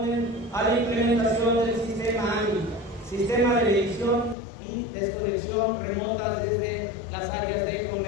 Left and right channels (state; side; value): drops out; right; at 4.4 s